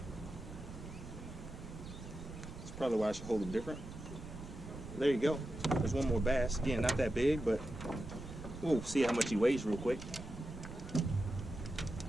That's probably why I should hold them different. There you go. There's one more bass. Again, not that big, but we'll see how much he weighs real quick.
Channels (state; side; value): noise; right; rumble, 12 dB below the sound